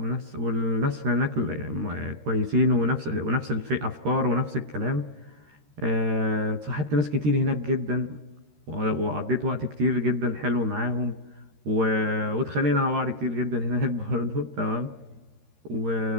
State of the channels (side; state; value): left; late; 13 ms